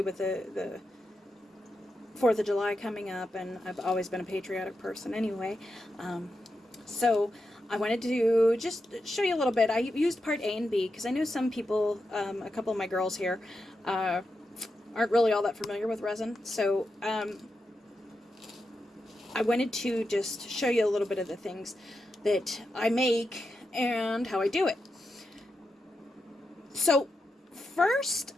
with the 4th of July coming up, and I've always been a patriotic person anyway. So I wanted to just show you a little bit. I used part A and B because I know some people, a couple of my girls here, aren't really all that familiar with resin. So I wanted to just show you a little bit of the things that I make and how I do it. So first,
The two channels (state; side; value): normal; both; correlation 0.87